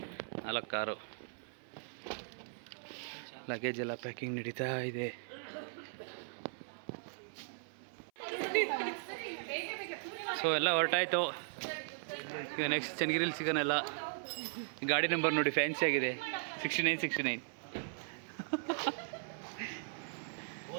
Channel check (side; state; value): left; silent; 52 dB below the other